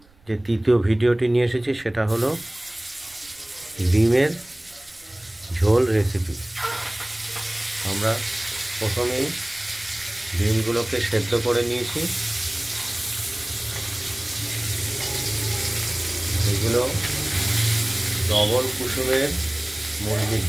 যে তৃতীয় ভিডিওটি নিয়ে এসেছি সেটা হলো ডিমের ঝোল রেসিপি। আমরা প্রথমেই ডিমগুলোকে সেদ্ধ করে নিয়েছি। এগুলো ডবল কুসুমের মুরগির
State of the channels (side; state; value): right; noise; rumble, 28 dB below the sound